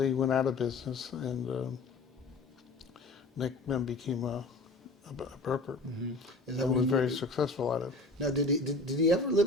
went out of business, and Nick then became a broker, Is that and what was he very did? successful at it. Now, did he ever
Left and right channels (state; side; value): quieter; right; 3.2 dB